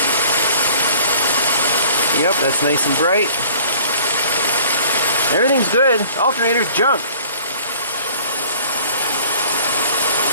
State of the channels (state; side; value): inverted; both; correlation -0.51